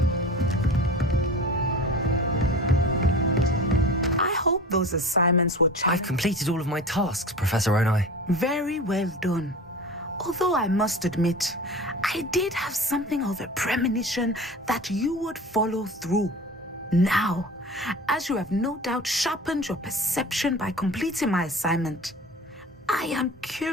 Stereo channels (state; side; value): normal; both; correlation 0.36